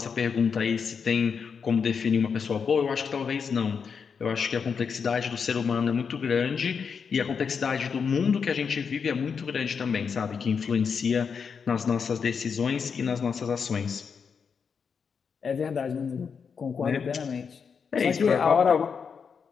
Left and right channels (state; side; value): quieter; right; 6.1 dB